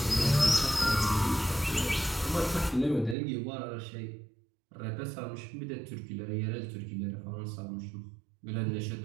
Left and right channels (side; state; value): left; drops out; at 3.2 s